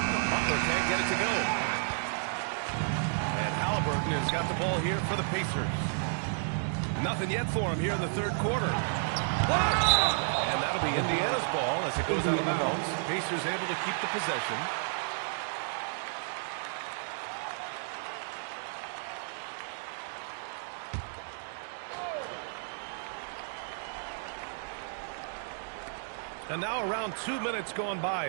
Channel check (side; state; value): left; silent; digital silence